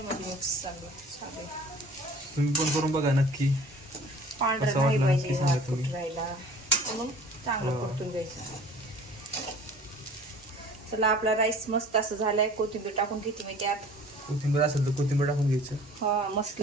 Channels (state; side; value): normal; both; correlation 0.47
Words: मध्ये मिक्स चांगलं. तुम्ही पण करून बघा नक्की. पांढरं कसं नाही वाटलं पाहिजे नक्की सांगा तुम्ही. राहायला म्हणून चांगलं परतून घ्यायचं. चला आपला राईस मस्त असं झालाय. कोथिंबीर टाकून घेते मी त्यात. कोथिंबीर असेल तर कोथिंबीर टाकून घ्यायचं. हा मस्त